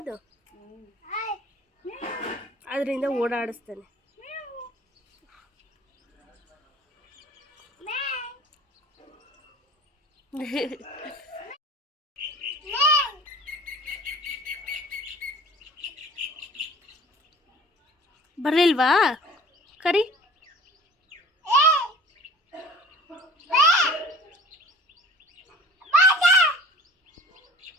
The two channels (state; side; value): normal; both; correlation 0.45